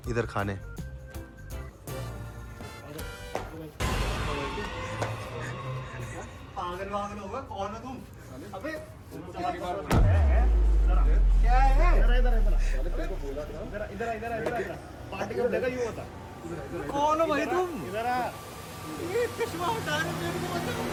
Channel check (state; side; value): identical; both; correlation 1.00